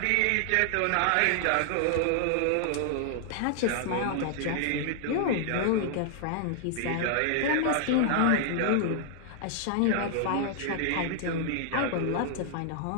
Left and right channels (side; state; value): both; different; correlation 0.00